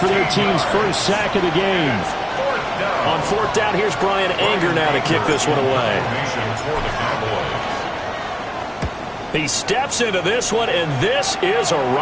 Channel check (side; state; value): both; identical; correlation 1.00